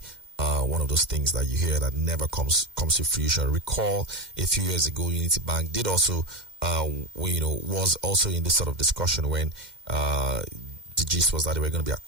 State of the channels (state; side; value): late; left; 2.1 ms